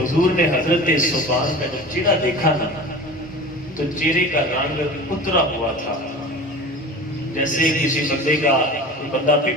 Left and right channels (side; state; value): both; normal; correlation 0.37